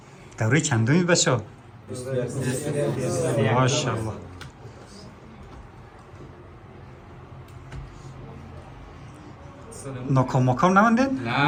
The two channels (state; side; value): identical; both; correlation 1.00